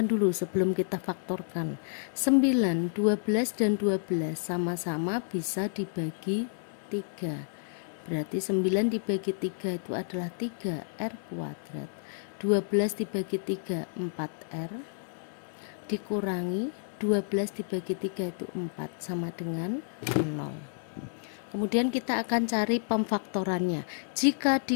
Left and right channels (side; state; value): right; silent; 58 dB below the other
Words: dulu sebelum kita faktorkan. 9, 12 dan 12 sama-sama bisa dibagi 3. Berarti 9 dibagi 3 itu adalah 3R kuadrat. 12 dibagi 3 4R dikurangi 12 dibagi 3 itu 4 sama dengan 0. Kemudian kita akan cari pemfaktorannya. Jika